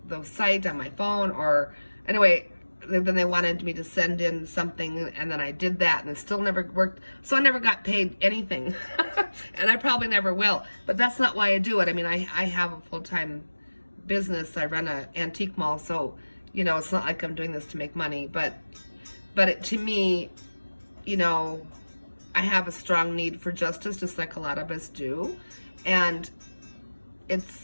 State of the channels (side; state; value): both; inverted; correlation -1.00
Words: site on my phone, or anyway, then they wanted me to send in something, and then I did that, and it still never worked. So I never got paid anything, and I probably never will. But that's not why I do it. I mean, I have a full-time business. I run an antique mall, so you know, it's not like I'm doing this to make money. But to me, you know, I have a strong need for justice, just like a lot of us do, and